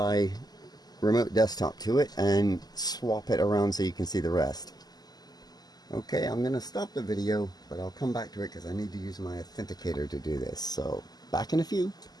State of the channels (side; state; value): right; late; 0.20 ms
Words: remote desktop to it and swap it around so you can see the rest. Okay, I'm going to stop the video, but I'll come back to it because I need to use my authenticator to do this. So back in a few.